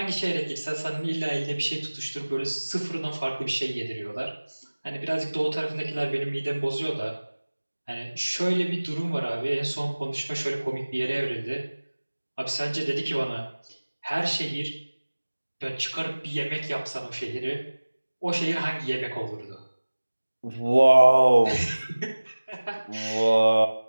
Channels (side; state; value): both; inverted; correlation -1.00